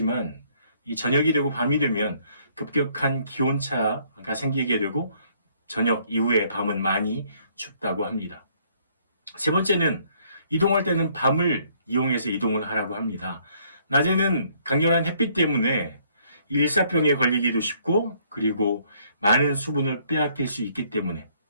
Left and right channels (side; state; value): both; inverted; correlation -0.65